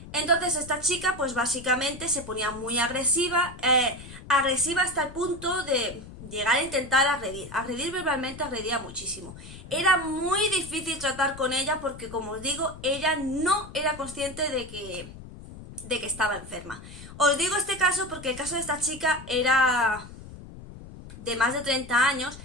Entonces esta chica pues básicamente se ponía muy agresiva, agresiva hasta el punto de llegar a intentar agredir verbalmente, agredía muchísimo. Era muy difícil tratar con ella porque, como os digo, ella no era consciente de que estaba enferma. Os digo este caso porque el caso de esta chica era de más de 30 años.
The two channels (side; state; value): left; noise; rumble, 15 dB below the sound